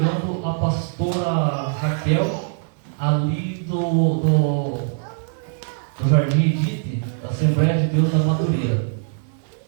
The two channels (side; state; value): left; silent; 64 dB below the other